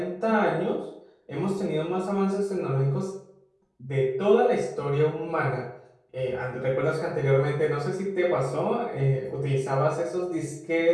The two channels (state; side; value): identical; both; correlation 1.00